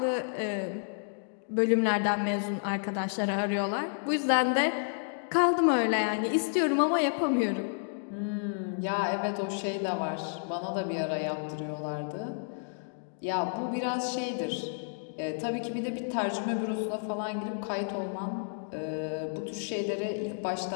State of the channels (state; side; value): silent; right; digital silence